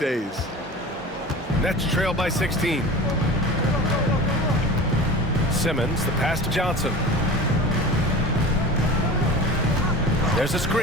Nets trail by 16. Simmons, the pass to Johnson. There's a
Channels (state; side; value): normal; both; correlation 0.35